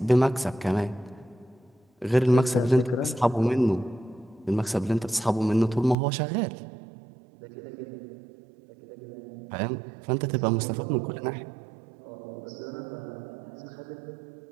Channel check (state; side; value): drops out; left; at 6.0 s